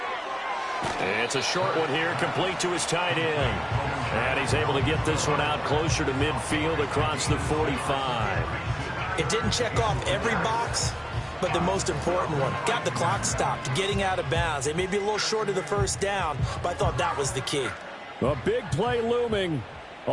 It's a short one here, complete to his tight end. And he's able to get this one out closer to midfield across the 45. It didn't check off every box, but the most important one. Got the clock stopped, getting out of bounds. They may be a little short of the first down, but I thought that was the key. A big play looming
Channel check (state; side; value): identical; both; correlation 1.00